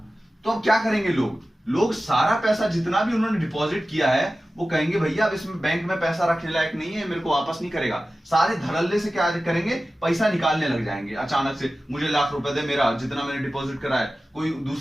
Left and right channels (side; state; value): both; normal; correlation 0.95